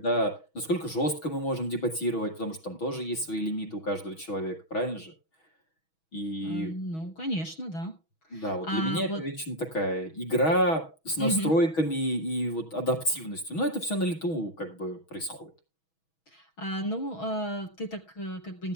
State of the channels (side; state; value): right; late; 6.2 ms